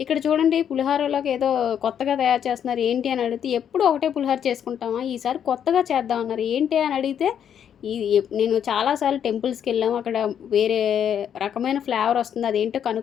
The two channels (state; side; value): quieter; right; 8.8 dB